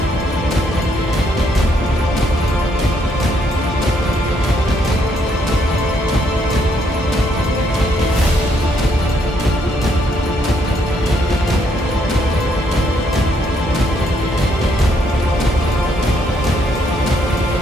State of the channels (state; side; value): normal; both; correlation 0.72